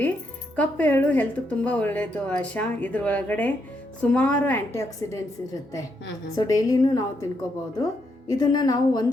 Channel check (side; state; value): both; normal; correlation 0.78